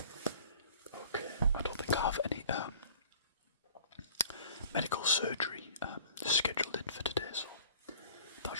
okay, I don't think I have any medical surgery scheduled in for today, so that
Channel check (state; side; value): inverted; both; correlation -0.49